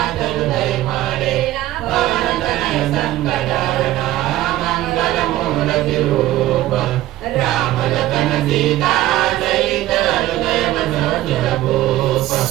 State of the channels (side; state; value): left; quieter; 15.1 dB